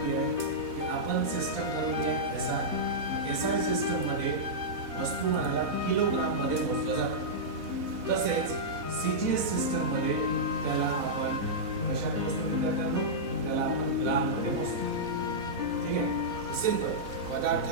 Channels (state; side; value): late; left; 4.1 ms